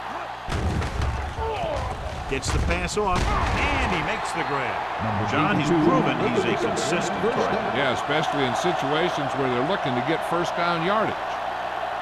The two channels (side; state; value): both; identical; correlation 1.00